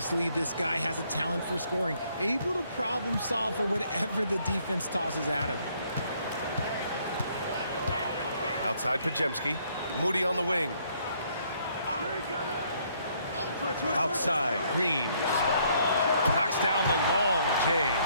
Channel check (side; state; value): both; inverted; correlation -0.67